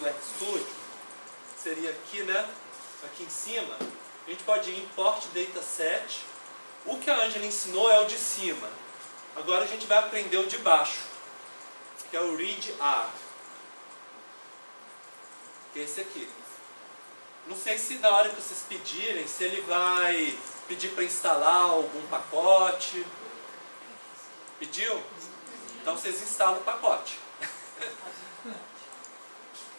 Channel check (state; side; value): inverted; both; correlation -1.00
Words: RStudio, seria aqui, né? Aqui em cima, a gente pode ir em Import Dataset. O que a Ângela ensinou é o de cima. Agora a gente vai aprender o de baixo, que é o Read R, que é esse aqui. Não sei se na hora que vocês pedirem, se ele vai pedir para instalar algum pacote. Pediu? Então vocês instalam o pacote.